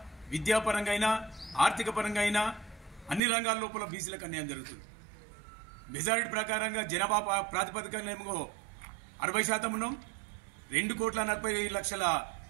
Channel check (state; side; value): drops out; left; at 3.2 s